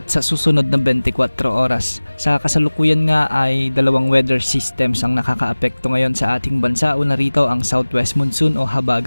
sa susunod na 24 oras. Sa kasalukuyan nga ay dalawang weather systems ang nakakaapekto ngayon sa ating bansa. Una rito ang southwest monsoon o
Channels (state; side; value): inverted; both; correlation -1.00